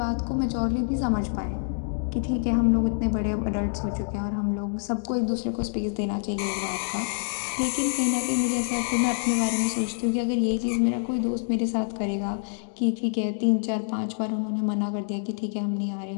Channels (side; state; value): right; silent; digital silence